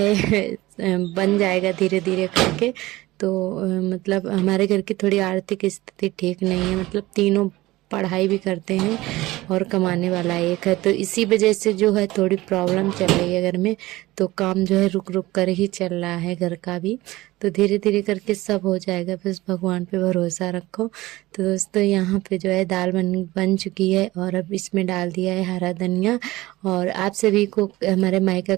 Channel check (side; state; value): left; quieter; 18.5 dB